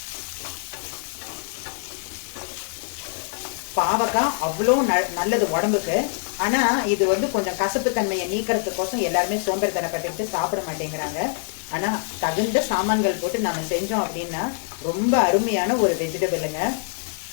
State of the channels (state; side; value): silent; right; digital silence